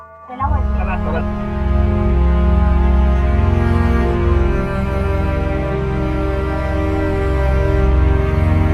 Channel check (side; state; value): both; identical; correlation 1.00